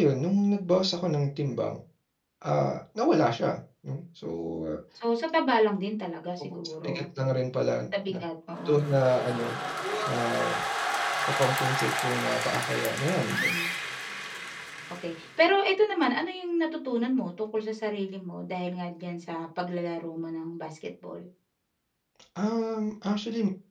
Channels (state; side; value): identical; both; correlation 1.00